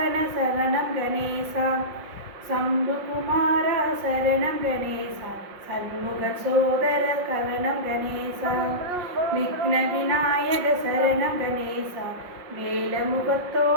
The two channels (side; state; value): left; late; 5.6 ms